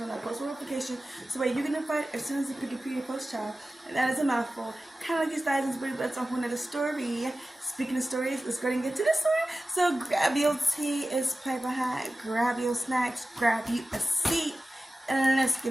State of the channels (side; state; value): both; normal; correlation 0.95